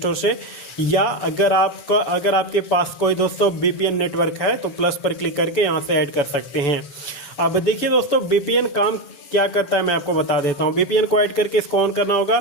से, या अगर आपके पास कोई दोस्तों VPN नेटवर्क है तो प्लस पर क्लिक करके यहाँ से ऐड कर सकते हैं। अब देखिए दोस्तों, VPN काम क्या करता है मैं आपको बता देता हूँ। VPN को ऐड करके इसको ऑन करना होगा।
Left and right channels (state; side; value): late; right; 7.0 ms